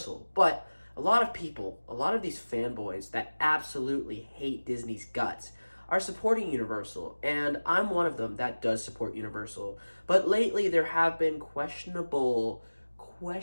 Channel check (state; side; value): inverted; both; correlation -1.00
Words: but a lot of these fanboys that absolutely hate Disney's guts are supporting Universal, and I'm one of them that does support Universal. But lately there have been questionable